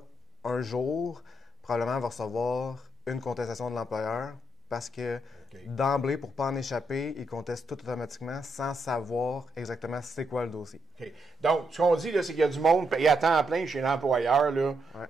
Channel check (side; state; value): both; normal; correlation 0.79